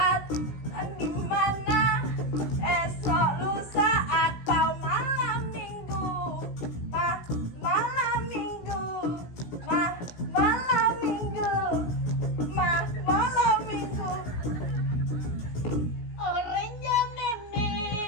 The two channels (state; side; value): late; right; 17 ms